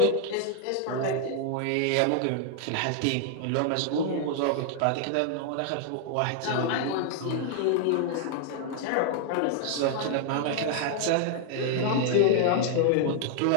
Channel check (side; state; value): both; different; correlation 0.00